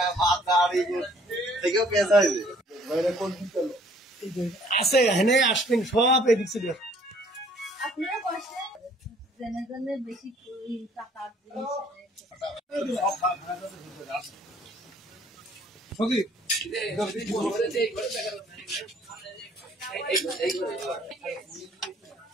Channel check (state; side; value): normal; both; correlation 0.59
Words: আছে হেনে আসবেন সব এদিক ছিল। আপনারা বসে জেনে জেনে বেশি টাকা